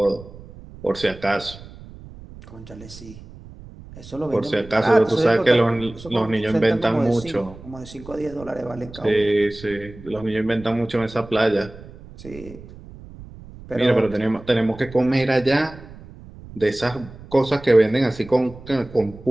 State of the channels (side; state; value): right; noise; rumble, 18 dB below the sound